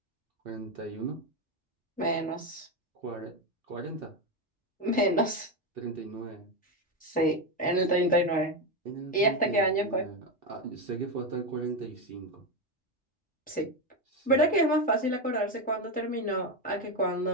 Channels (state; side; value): normal; both; correlation 0.11